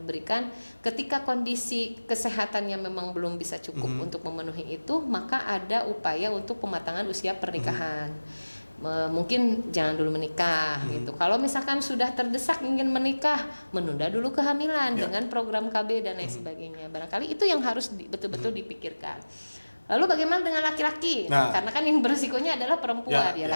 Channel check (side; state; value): both; inverted; correlation -1.00